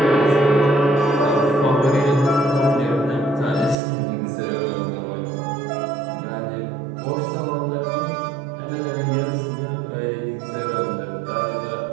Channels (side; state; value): left; drops out; at 3.8 s